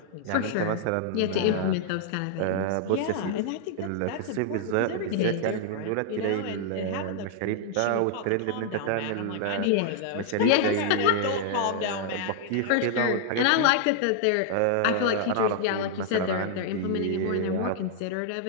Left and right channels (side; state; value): both; different; correlation -0.01